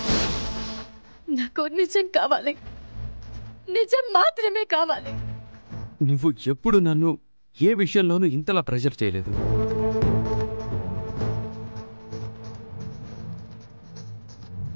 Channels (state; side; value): inverted; both; correlation -1.00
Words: నాకు నిజం కావాలి, నిజం మాత్రమే కావాలి. నువ్వు ఎప్పుడు నన్ను ఏ విషయంలోనూ ఇంతలా ప్రెషర్ చేయలేదు.